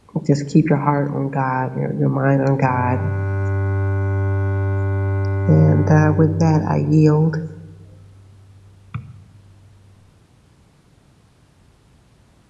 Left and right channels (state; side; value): identical; both; correlation 1.00